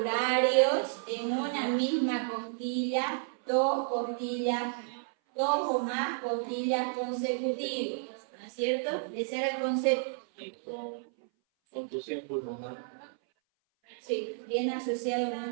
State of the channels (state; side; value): silent; left; 57 dB below the other